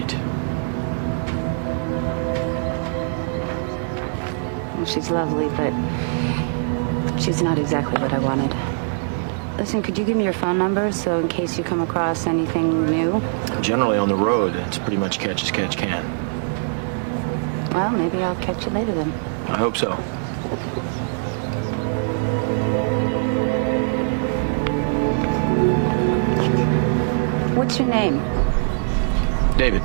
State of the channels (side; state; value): left; silent; digital silence